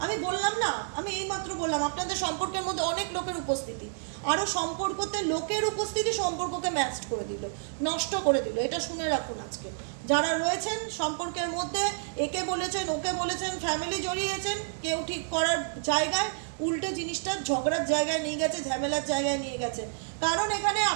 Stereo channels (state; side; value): silent; left; digital silence